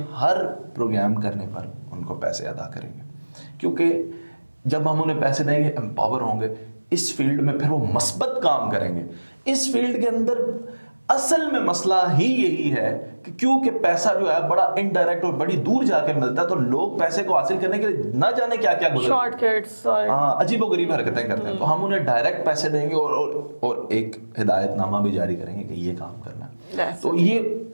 हर प्रोग्राम करने पर उनको पैसे अदा करेंगे, क्योंकि जब हम उन्हें पैसे देंगे, एम्पावर होंगे इस फील्ड में, फिर वो मस्बत काम करेंगे। इस फील्ड के अंदर असल में मसला ही यही है कि क्योंकि पैसा जो है बड़ा इनडायरेक्ट और बड़ी दूर जाके मिलता है, तो लोग पैसे को हासिल करने के लिए ना जाने क्या क्या शॉर्टकट्स और अजीबोगरीब हरकतें करते हैं। तो हम उन्हें डायरेक्ट पैसे देंगे और एक हिदायतनामा भी जारी करेंगे कि ये काम करना है। तो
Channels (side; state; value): both; inverted; correlation -1.00